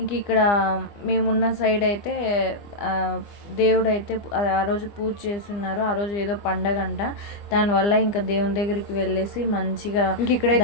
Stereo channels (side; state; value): right; late; 25 ms